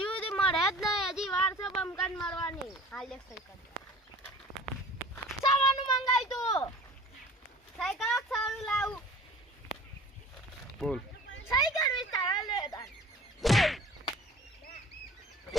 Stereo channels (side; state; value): both; normal; correlation 0.45